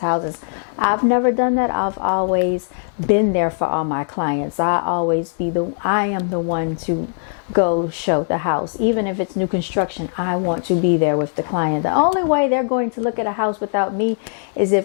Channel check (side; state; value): right; silent; digital silence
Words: houses. I've never done that. I've always been there for all my clients. I am the one to go show the house. Even if it's new construction, I want to be there with the client. The only way they're going to look at a house without me is